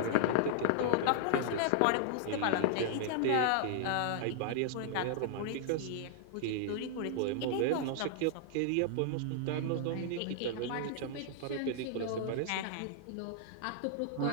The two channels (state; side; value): different; both; correlation -0.01